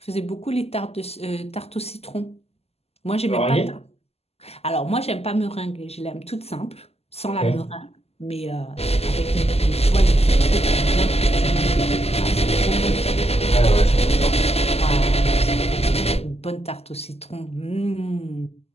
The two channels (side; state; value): right; late; 0.29 ms